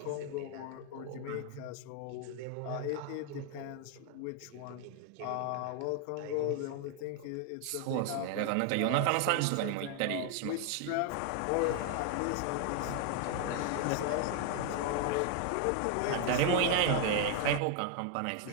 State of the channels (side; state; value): both; different; correlation 0.00